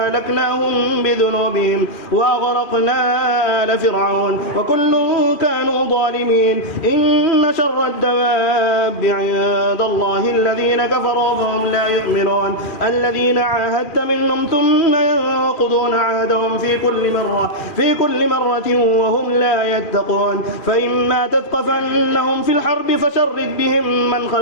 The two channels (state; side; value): late; right; 2.4 ms